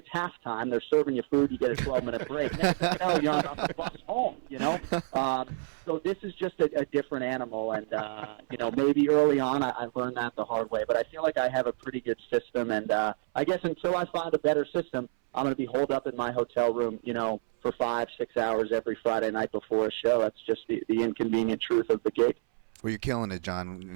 halftime. They're serving you food. You get a 12-minute break. Next thing you know, you're on the bus home. So this is just a different animal. And maybe early on I learned that the hard way. But I feel like I have a pretty good system. And I guess until I find a better system, I'm going to be holed up in my hotel room, for 5-6 hours every Friday night before a show. That's just the inconvenient truth of the gig. Well, you're killing it, John,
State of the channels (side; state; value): left; silent; 59 dB below the other